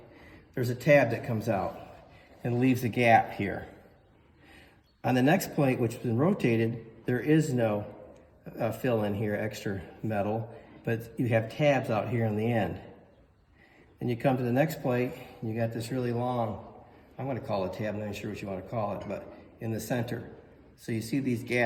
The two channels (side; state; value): both; identical; correlation 1.00